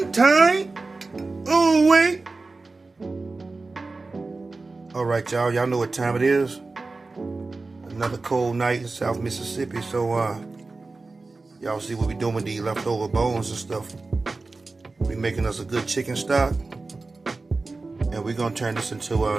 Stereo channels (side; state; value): left; quieter; 3.6 dB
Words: Oh, wait. All right, y'all. Y'all know what time it is. Another cold night in South Mississippi. So, y'all see what we doing with these leftover bones and stuff. We making us a good chicken stock. And we're going to turn this